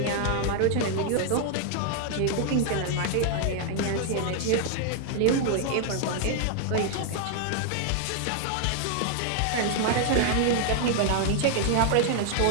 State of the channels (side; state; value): both; different; correlation 0.00